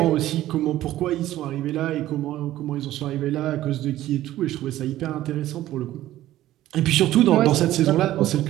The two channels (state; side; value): quieter; left; 14.3 dB